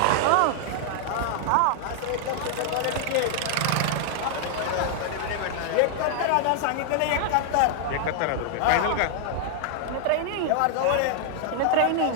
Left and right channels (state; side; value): different; both; correlation 0.00